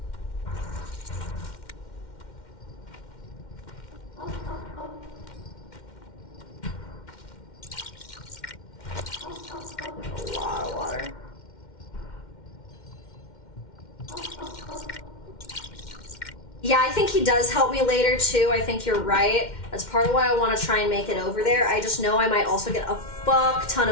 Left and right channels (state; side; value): late; right; 2.1 ms